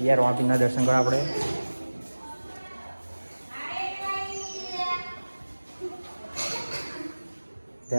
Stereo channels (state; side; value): inverted; both; correlation -1.00